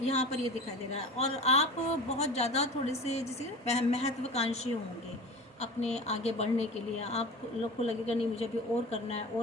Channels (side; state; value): both; normal; correlation 0.35